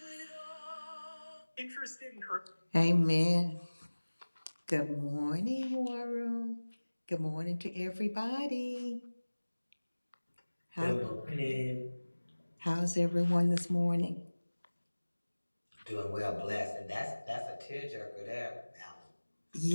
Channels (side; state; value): both; inverted; correlation -1.00